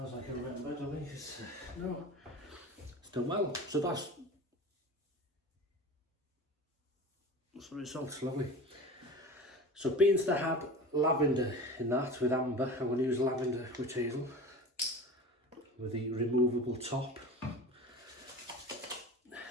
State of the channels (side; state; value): both; normal; correlation 0.34